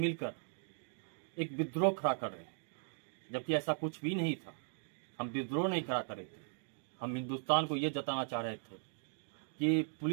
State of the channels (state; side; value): silent; left; digital silence